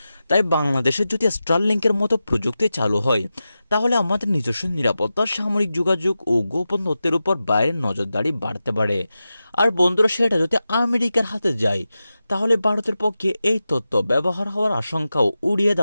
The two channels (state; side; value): inverted; both; correlation -0.92